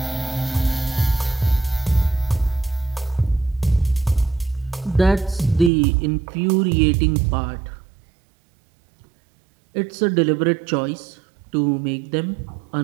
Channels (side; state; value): left; drops out; at 5.7 s